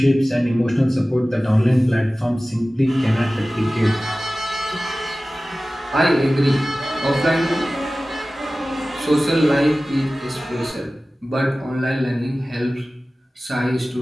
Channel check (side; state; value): both; normal; correlation 0.97